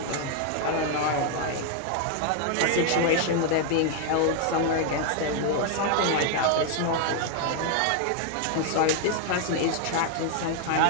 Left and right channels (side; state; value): both; different; correlation 0.00